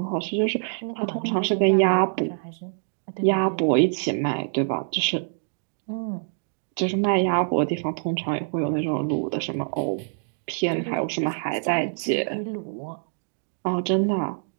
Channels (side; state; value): left; silent; digital silence